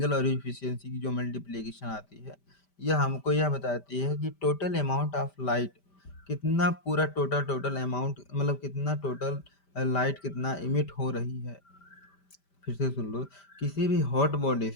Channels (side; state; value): right; late; 5.1 ms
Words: और इफिशियंसी की जो मल्टीप्लिकेशन आती है, यह हमको यह बताती है कि टोटल अमाउंट ऑफ लाइट कितना, पूरा टोटल अमाउंट मतलब कितना टोटल लाइट कितना इमिट हो रही है। फिर से सुन लो, किसी भी हॉट बॉडी